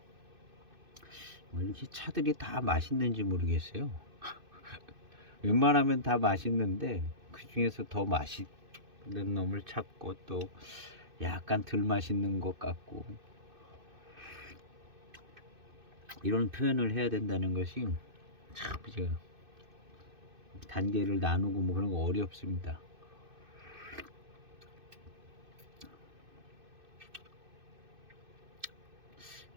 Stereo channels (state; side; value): late; left; 2.6 ms